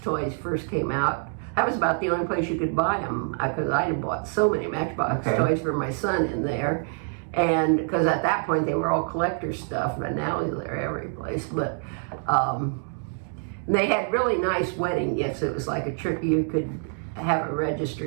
first came out, that was about the only place you could buy them, because I had bought so many Matchbox toys for my son in there. And because at that point they were all collector stuff, but now they're every place. But they had really nice wedding gifts. It was like a trick. You could have a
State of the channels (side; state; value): left; silent; 55 dB below the other